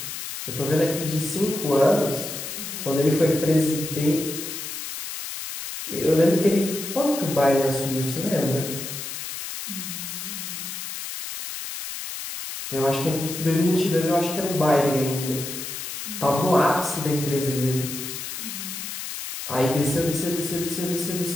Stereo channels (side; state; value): left; noise; hiss, 7 dB below the sound